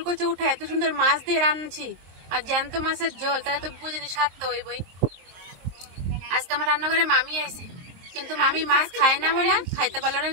উঠে এত সুন্দর মাছ দিয়ে রান্নাছি, আর জ্যান্ত মাছের ঝোল, তাহলে তো বুঝিনি স্বাদ তো হইবই। আজকে আমার রান্নাঘরে মামি আইছে, কিন্তু মামি মাছ খায় না বলে খাইতে পারলো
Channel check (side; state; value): left; late; 23 ms